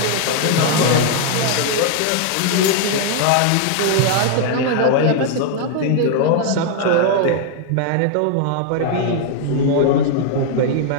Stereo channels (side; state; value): both; different; correlation 0.00